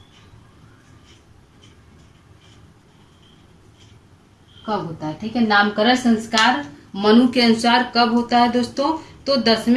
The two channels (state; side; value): identical; both; correlation 1.00